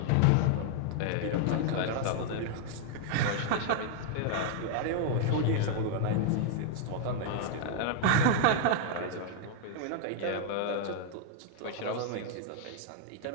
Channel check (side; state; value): both; different; correlation -0.01